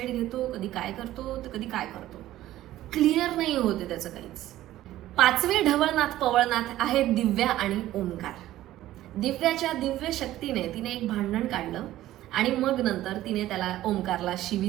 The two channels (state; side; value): quieter; left; 14.5 dB